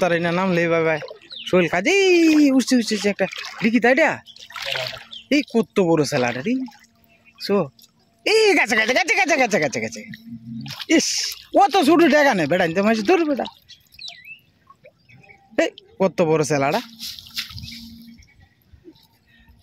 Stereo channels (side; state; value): both; identical; correlation 1.00